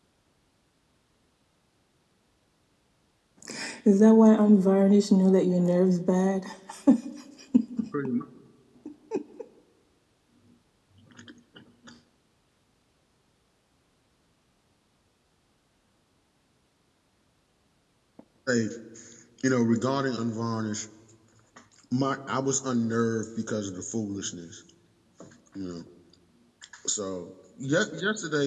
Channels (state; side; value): identical; both; correlation 1.00